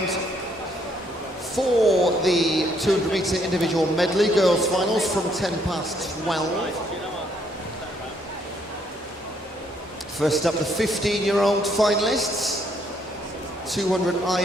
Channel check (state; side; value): normal; both; correlation 0.69